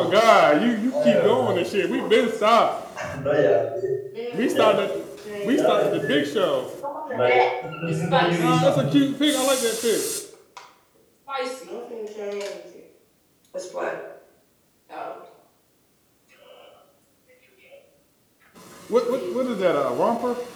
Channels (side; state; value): both; identical; correlation 1.00